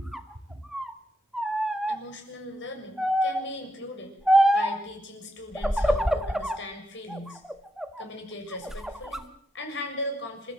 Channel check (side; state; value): both; normal; correlation 0.82